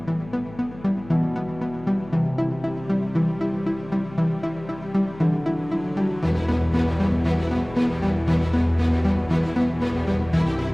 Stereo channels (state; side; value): noise; left; hum, 19 dB below the sound